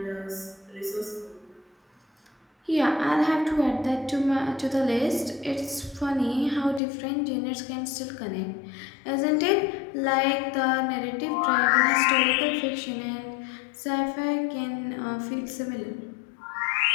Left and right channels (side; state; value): right; drops out; at 6.8 s